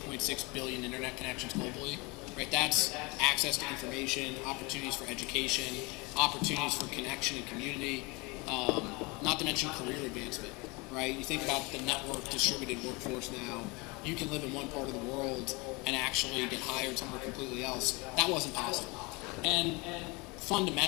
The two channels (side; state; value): right; quieter; 26.8 dB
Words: billion internet connections globally, right? That's access to information, opportunities for education, opportunities for connection and community, not to mention career advancement, right? You think about the network distributed workforce now. You can live in one part of the world and actually get hired somewhere completely else. That wasn't possible. And